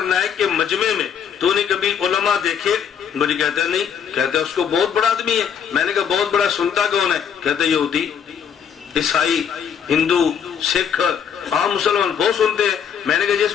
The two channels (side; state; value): right; quieter; 7.8 dB